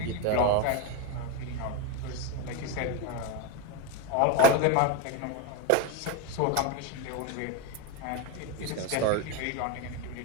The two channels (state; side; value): different; both; correlation 0.04